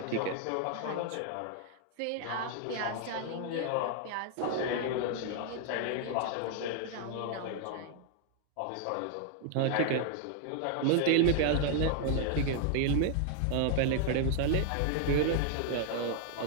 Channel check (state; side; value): different; both; correlation 0.00